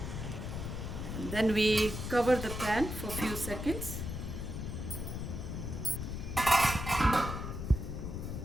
And then we cover the pan for a few seconds.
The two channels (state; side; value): noise; left; rumble, 5 dB below the sound